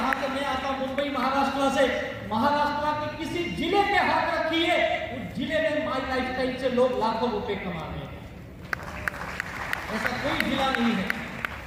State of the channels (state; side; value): identical; both; correlation 1.00